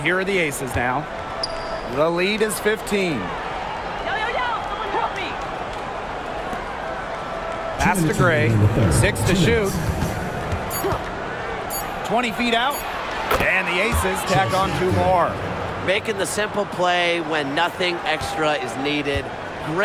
are the Aces now. The lead is 15. Pass to Gray. 6 to shoot. 20 feet out. And the Aces tack on 2 more. Making the simple play when nothing extra is needed.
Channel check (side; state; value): both; identical; correlation 1.00